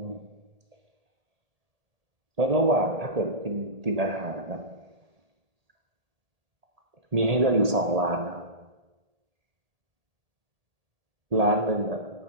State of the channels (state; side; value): late; left; 1.8 ms